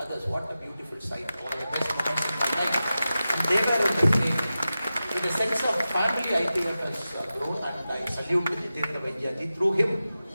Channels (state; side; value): inverted; both; correlation -0.93